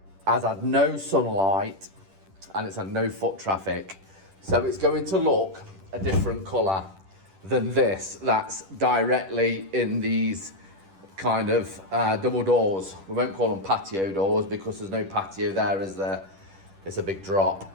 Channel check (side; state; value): left; late; 10 ms